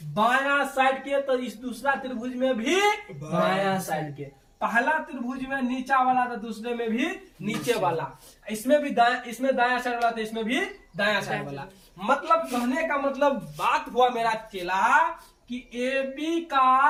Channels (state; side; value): identical; both; correlation 1.00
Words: बायां साइड के तो इस दूसरा त्रिभुज में भी बायां साइड के। पहला त्रिभुज में नीचा वाला तो दूसरे में भी नीचे वाला, इसमें भी इसमें दायां साइड वाला तो इसमें भी दायां साइड वाला। मतलब कहने का मतलब बात हुआ मेरा चेला कि AB